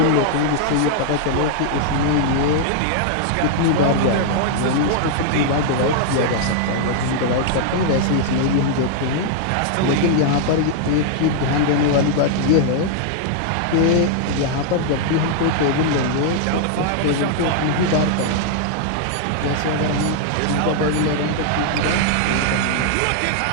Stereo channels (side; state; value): both; different; correlation -0.01